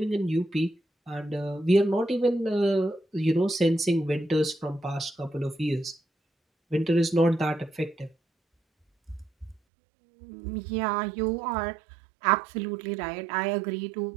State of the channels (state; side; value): drops out; left; at 9.6 s